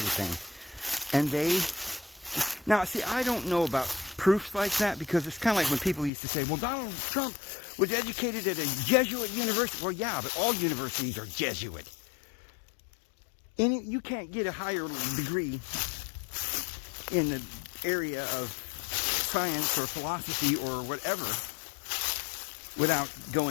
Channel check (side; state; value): right; drops out; at 6.1 s